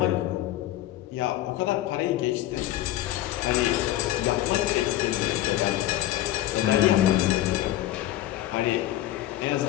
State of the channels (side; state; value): right; quieter; 14.3 dB